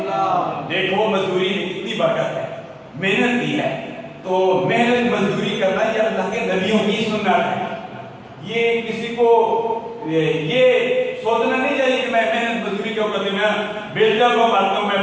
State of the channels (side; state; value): both; identical; correlation 1.00